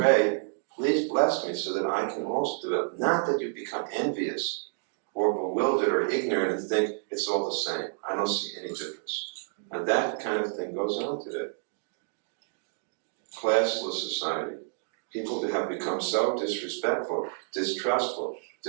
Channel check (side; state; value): left; silent; digital silence